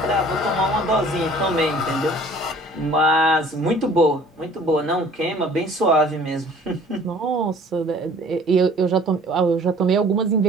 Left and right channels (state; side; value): normal; both; correlation 0.51